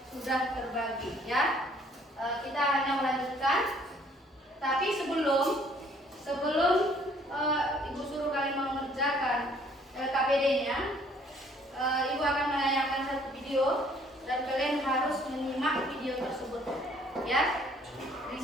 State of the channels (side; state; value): both; normal; correlation 0.61